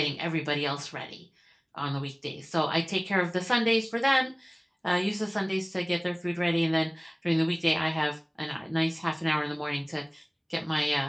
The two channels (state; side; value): identical; both; correlation 1.00